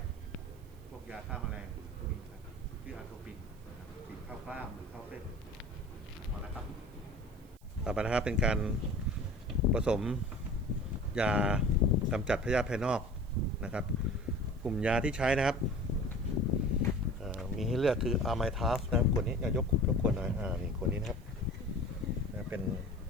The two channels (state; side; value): noise; right; hiss, 30 dB below the sound